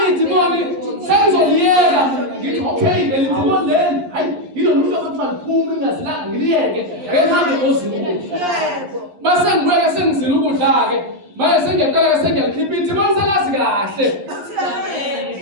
idimoni sengizoliyela ngithi okay leli idimoni leli hayi yilo muntu akuthiwa liphuma ingazilanga ngiliyeke ngihambe ngozila ukudla. Mase ngibuye sengizila ukudla ke manje sengiyaqala sengiyalikhipha idimoni selazi kahle.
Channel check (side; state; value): left; late; 11 ms